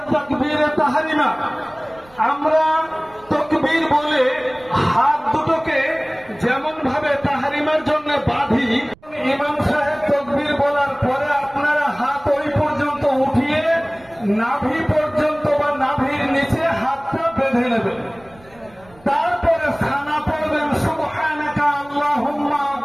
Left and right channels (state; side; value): noise; right; rumble, 27 dB below the sound